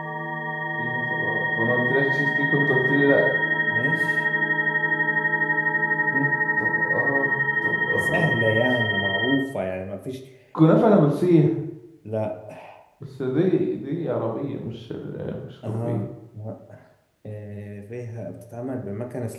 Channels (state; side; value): identical; both; correlation 1.00